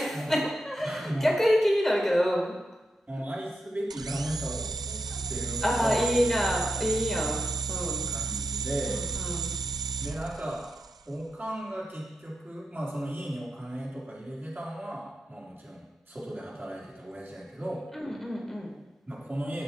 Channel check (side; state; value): both; normal; correlation 0.87